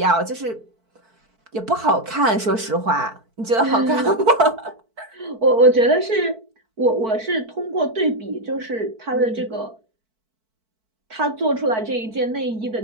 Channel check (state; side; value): late; left; 4.5 ms